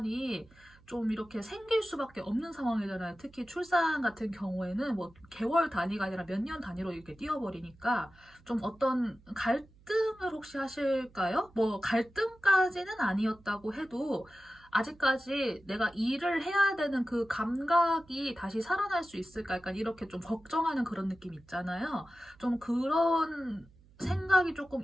좀 이렇게 생길 수밖에 없는 상황이잖아요. 특히 출산 같은 경우에는 뭐 개월 단위가 아니라 몇 년 단위로 이렇게 뛰어버리니까 좀 어떤 갈등을 혹시 하실까요? 뭐 갈등까지는 아니었다고 해도 아직까지 내가 일을 해야 되는 그 감각이 다시 살아날 수 있을까? 약간 이렇게 좀 걱정하는 그런 느낌 있잖아요. 좀 그런 생각이 조금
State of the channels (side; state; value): right; noise; hum, 27 dB below the sound